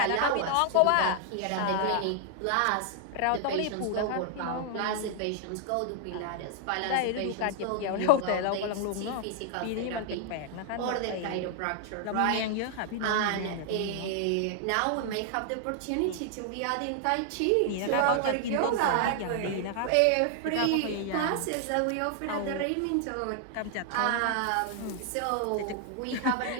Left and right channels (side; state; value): both; different; correlation 0.00